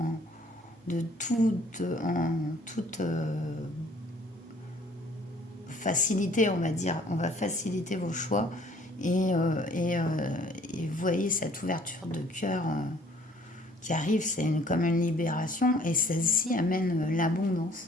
toute facilité, on va dire. On va faciliter vos choix et vous voyez cette ouverture de cœur qui arrive, c'est comme une libération et celle-ci amène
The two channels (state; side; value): normal; both; correlation 0.57